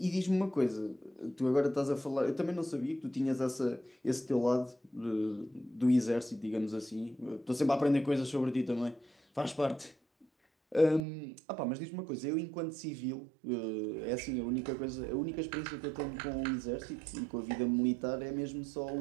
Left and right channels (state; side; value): drops out; left; at 11.1 s